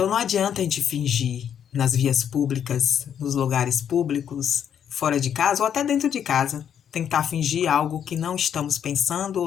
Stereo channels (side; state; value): right; quieter; 8.8 dB